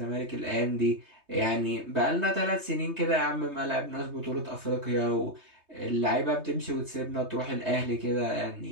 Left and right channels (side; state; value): left; late; 3.2 ms